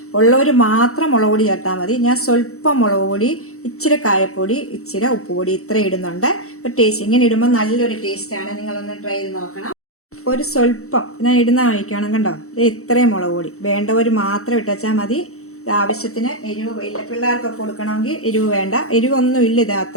ഉള്ളവർ മാത്രം മുളക് പൊടി ചേർത്താൽ മതി. ഞാൻ സ്വല്പം മുളക് പൊടി, ഇച്ചിരി കായപ്പൊടി, ഇച്ചിരി ഉപ്പുപൊടി ഇത്ര ഇടുന്നുണ്ട്. ഒരു ടേസ്റ്റ് ഇങ്ങനെ ഇടുമ്പോൾ നല്ലൊരു ടേസ്റ്റാണ്. നിങ്ങളൊന്ന് ട്രൈ ചെയ്ത് നോക്കണം. ഒരു സ്വല്പം ഞാൻ ഇടുന്ന കഴിക്കണം. കണ്ടോ, ഇത്രയും മുളക് പൊടി വേണ്ടവർ മാത്രം ഇട്ടുവച്ചാൽ മതി. ആവശ്യത്തിന് എരിവ് ഇല്ല, പിള്ളേർക്കൊക്കെ കൊടുക്കണമെങ്കിൽ എരിവ് വേണ്ട, എരിവൊന്നും ഇല്ല. ഇത്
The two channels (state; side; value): late; right; 0.64 ms